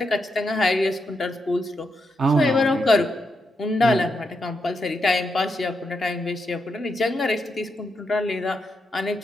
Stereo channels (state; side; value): normal; both; correlation 0.83